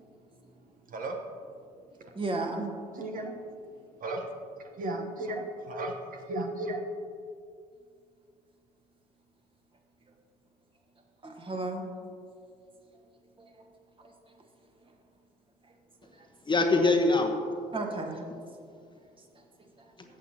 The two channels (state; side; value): normal; both; correlation 0.54